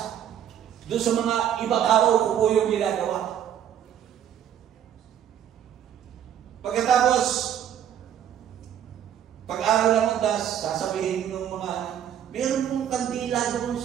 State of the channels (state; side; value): quieter; left; 9.9 dB